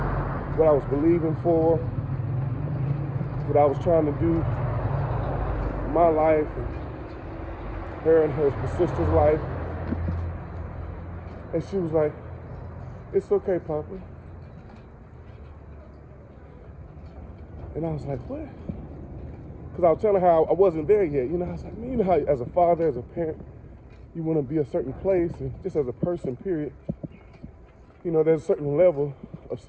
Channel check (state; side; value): identical; both; correlation 1.00